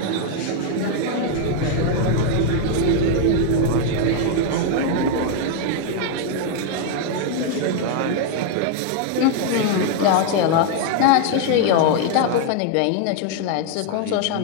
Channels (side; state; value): both; different; correlation 0.00